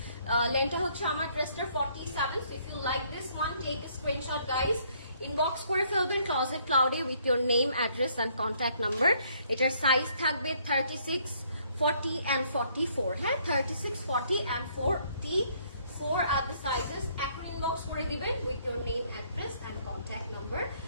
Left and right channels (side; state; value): both; inverted; correlation -0.66